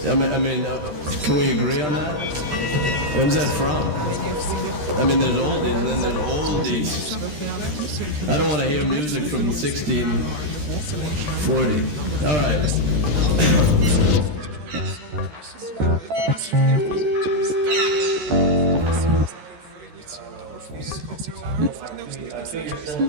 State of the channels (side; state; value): left; late; 13 ms